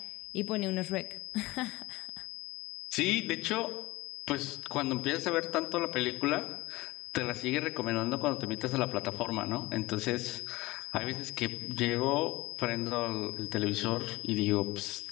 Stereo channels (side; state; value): right; quieter; 20.1 dB